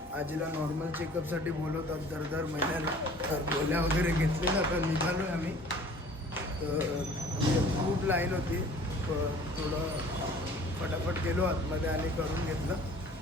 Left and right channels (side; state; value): both; normal; correlation 0.49